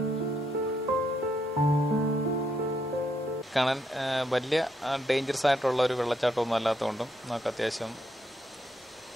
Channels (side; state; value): both; normal; correlation 0.77